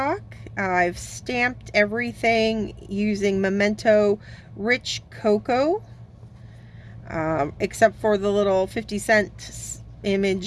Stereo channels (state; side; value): identical; both; correlation 1.00